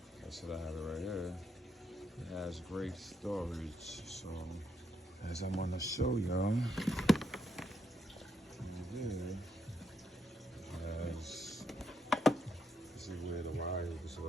I said I have it right here. It has great storage. So as I'm gonna show y'all,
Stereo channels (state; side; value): normal; both; correlation 0.77